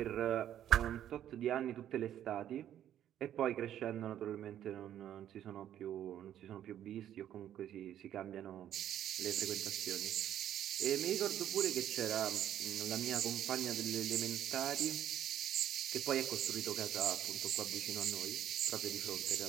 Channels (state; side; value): quieter; left; 11.0 dB